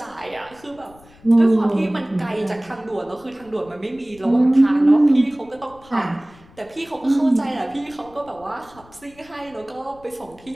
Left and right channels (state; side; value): noise; left; rumble, 25 dB below the sound